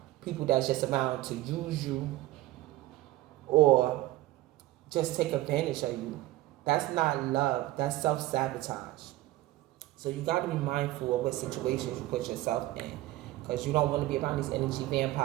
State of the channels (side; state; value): left; quieter; 16.9 dB